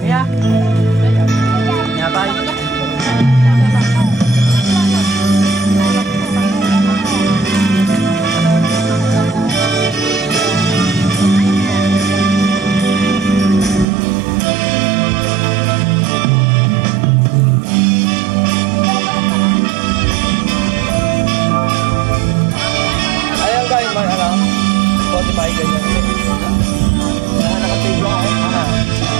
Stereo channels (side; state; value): left; drops out; at 13.9 s